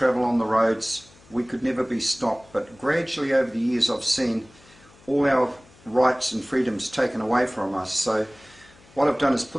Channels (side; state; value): left; noise; hum, 26 dB below the sound